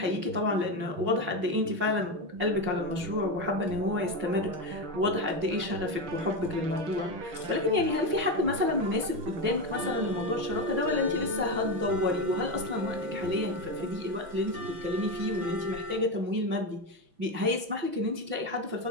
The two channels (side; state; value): left; late; 6.0 ms